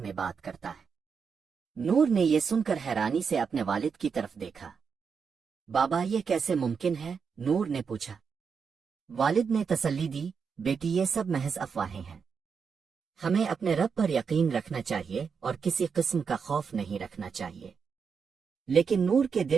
بات کرتا ہے۔ نور نے یہ سن کر حیرانی سے اپنے والد کی طرف دیکھا۔ بابا یہ کیسے ممکن ہے؟ نور نے پوچھا۔ والد نے تسلی دی، بیٹی یہ سب محض افواہیں ہیں۔ ہمیں اپنے رب پر یقین رکھنا چاہیے اور کسی قسم کا خوف نہیں رکھنا چاہیے۔ لیکن نور کے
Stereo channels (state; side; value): quieter; left; 6.0 dB